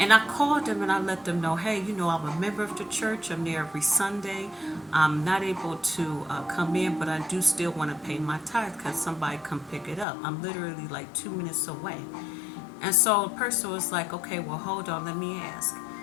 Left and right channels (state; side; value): drops out; right; at 10.1 s